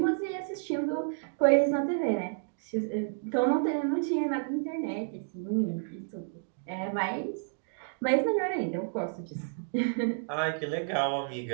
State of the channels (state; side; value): silent; left; digital silence